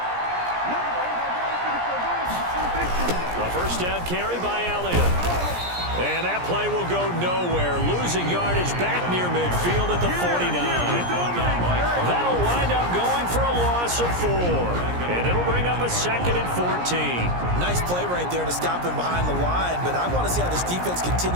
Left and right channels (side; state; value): left; late; 17 ms